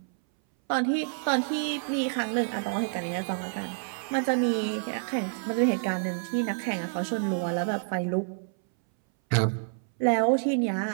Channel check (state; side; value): silent; left; 59 dB below the other